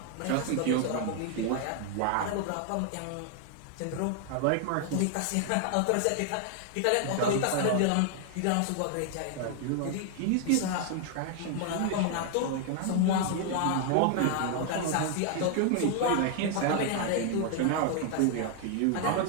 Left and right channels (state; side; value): different; both; correlation 0.00